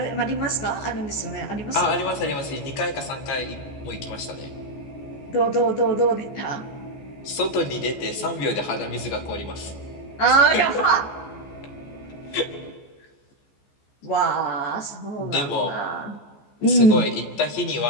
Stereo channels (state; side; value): late; right; 14 ms